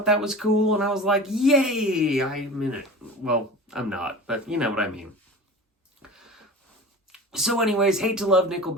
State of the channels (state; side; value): normal; both; correlation 0.35